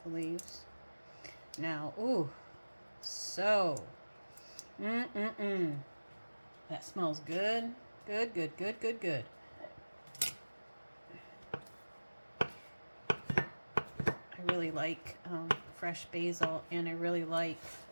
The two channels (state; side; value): inverted; both; correlation -1.00